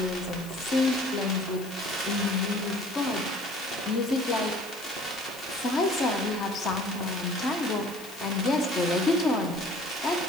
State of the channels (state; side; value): noise; left; hiss, 16 dB below the sound